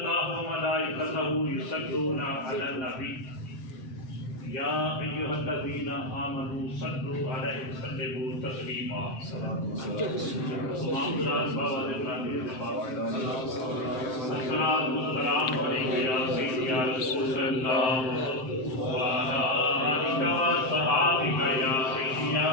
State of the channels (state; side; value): late; right; 7.7 ms